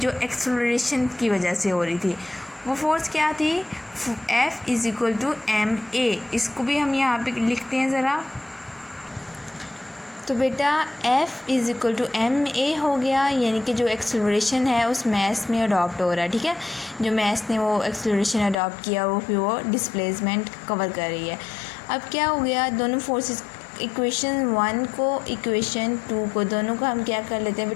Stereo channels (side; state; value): right; drops out; at 18.6 s